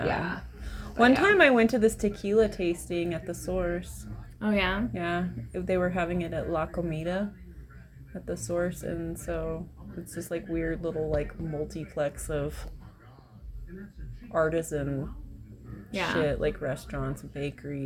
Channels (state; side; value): identical; both; correlation 1.00